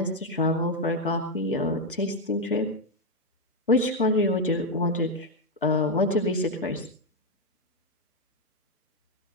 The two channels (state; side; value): normal; both; correlation 0.04